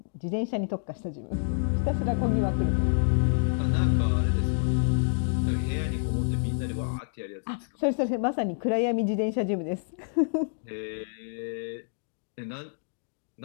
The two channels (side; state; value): right; silent; digital silence